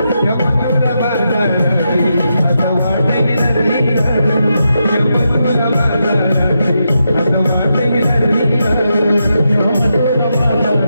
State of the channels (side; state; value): both; inverted; correlation -0.84